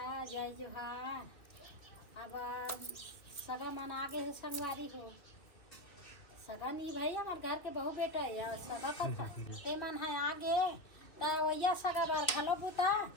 जय जोहार। अब सगा मन आगे है संगवारी हो सगा नहीं भाई हमारे घर के बहू बेटा है सगा कथा ते मन है आगे वैया सगा बार घलो बुता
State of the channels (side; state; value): right; late; 2.6 ms